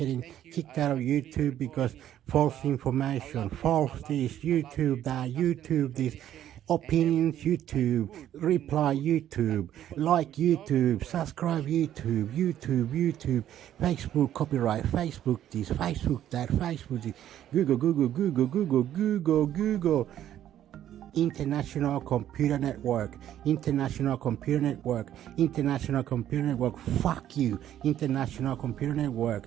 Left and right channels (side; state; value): left; quieter; 11.4 dB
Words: kicked out of YouTube because false information, false this, YouTube that, YouTube this. Opinions YouTube, reply YouTube, like YouTube, subscribe YouTube, Facebook copyright, Facebook this, Facebook that, Facebook this, Google. International Computer Network, fuck you, International Computer Network,